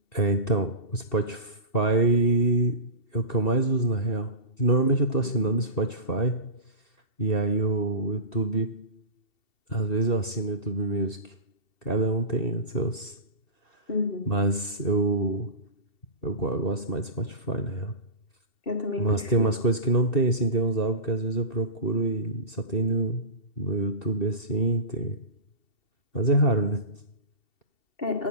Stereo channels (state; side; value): late; right; 2.7 ms